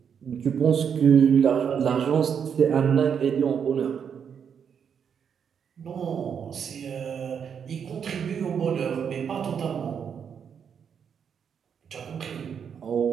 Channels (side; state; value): left; quieter; 7.4 dB